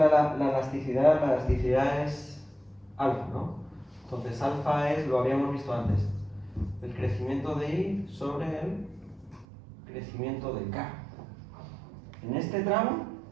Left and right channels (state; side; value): drops out; left; at 9.5 s